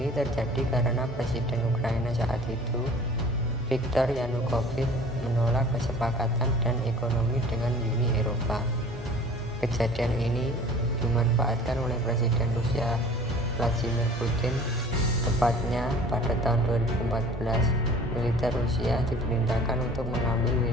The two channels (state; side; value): normal; both; correlation 0.47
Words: terjadi karena Presiden Ukraina saat itu, Viktor Yanukovych, menolak kesepakatan dan ekonomi dengan Uni Eropa. Kejadian ini dimanfaatkan oleh Presiden Rusia Vladimir Putin. Tepatnya pada tahun 2014, militer Rusia diperintahkan untuk mengambil